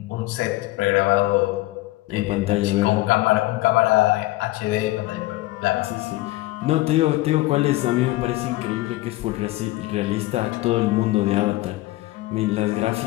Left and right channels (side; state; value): right; quieter; 18.6 dB